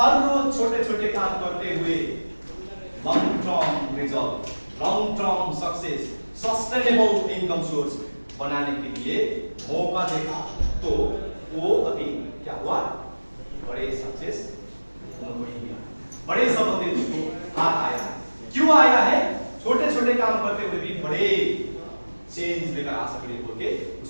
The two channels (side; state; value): both; inverted; correlation -1.00